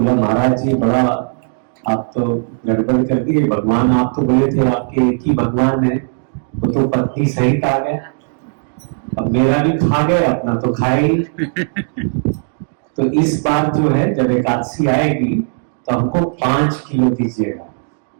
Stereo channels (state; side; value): silent; left; 62 dB below the other